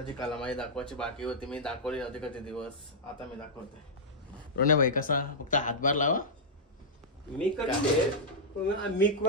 कला माझी दाखवायची बाकी होती, मी दाखवली नव्हती कधी दिवस, आता मी दाखवते. रोने भाई कसा फक्त हातभार लावा. मी करते मी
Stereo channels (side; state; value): both; normal; correlation -0.09